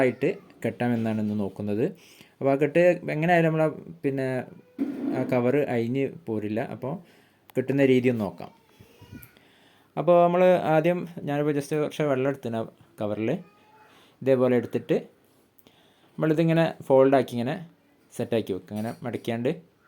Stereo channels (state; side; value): identical; both; correlation 1.00